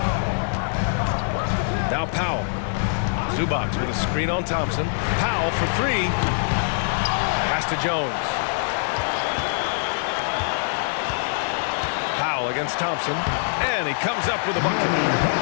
Now Powell. Zubac with a screen on Thompson. Powell for three. Pass to Jones. Powell against Thompson, and he comes up with a bucket.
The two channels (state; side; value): silent; right; digital silence